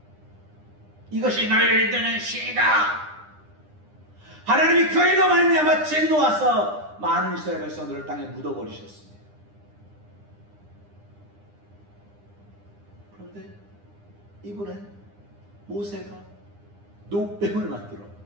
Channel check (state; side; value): late; left; 9.9 ms